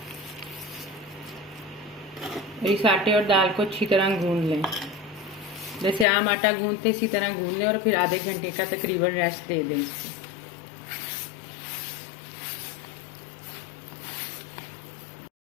और इस आटे और दाल को अच्छी तरह गूंद लें, जैसे आम आटा गूंदते इसी तरह गूंद लें और फिर आधे घंटे का तकरीबन रेस्ट दे दें इसको।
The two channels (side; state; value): right; drops out; at 6.1 s